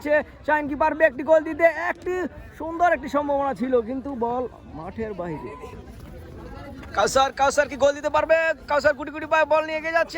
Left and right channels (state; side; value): identical; both; correlation 1.00